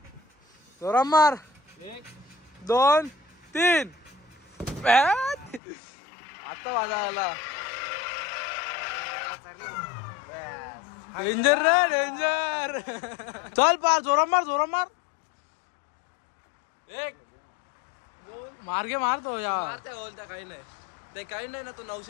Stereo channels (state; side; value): drops out; right; at 5.6 s